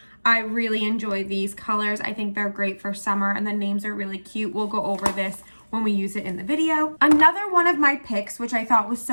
I really enjoy these colors. I think they're great for summer, and the names are really cute. We'll go over this when we use it in the video. Another one of my picks, which I thought was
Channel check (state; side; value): inverted; both; correlation -1.00